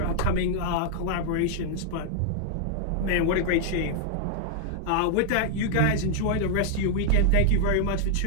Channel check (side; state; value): both; different; correlation -0.01